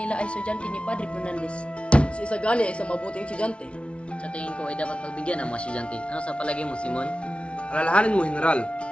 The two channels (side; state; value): right; late; 0.060 ms